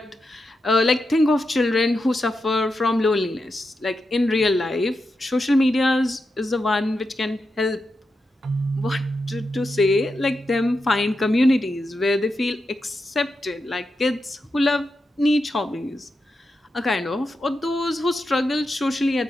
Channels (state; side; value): normal; both; correlation 0.88